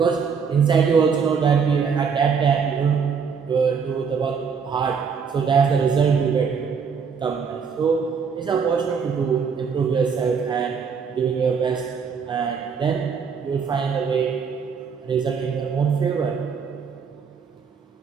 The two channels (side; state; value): left; quieter; 6.1 dB